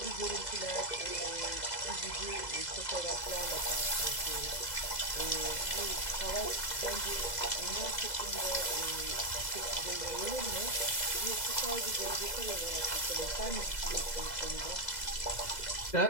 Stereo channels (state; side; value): late; right; 2.0 ms